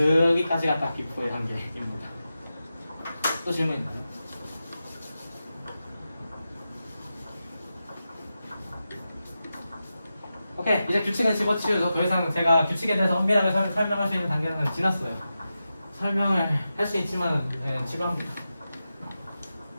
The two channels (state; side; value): inverted; both; correlation -0.91